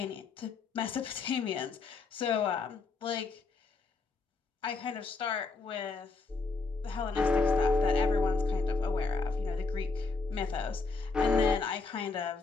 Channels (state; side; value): quieter; right; 4.1 dB